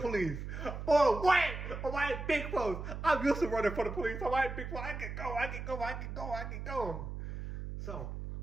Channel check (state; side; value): noise; right; hum, 7 dB below the sound